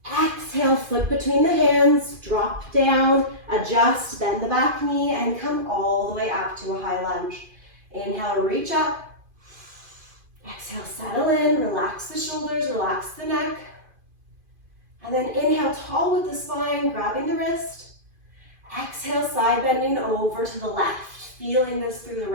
Exhale, foot between the hands, drop down, adjust, bend the back knee, and come all the way up to a high lunge. Inhale, reach up. Exhale, settle in, relax the shoulders, relax the neck. And then inhale, tall with the spine, grabbing the wrist. Exhale, side bending over to the left, feeling this through the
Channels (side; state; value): left; late; 2.5 ms